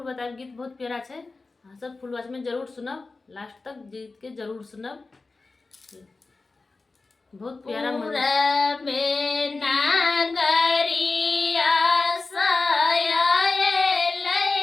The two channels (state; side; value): quieter; right; 3.7 dB